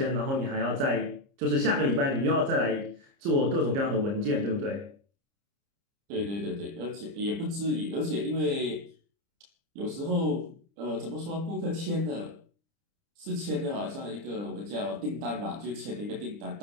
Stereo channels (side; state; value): left; late; 30 ms